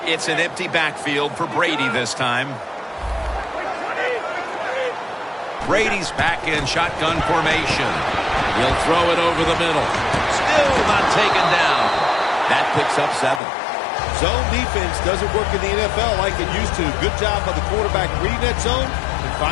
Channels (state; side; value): drops out; right; at 13.4 s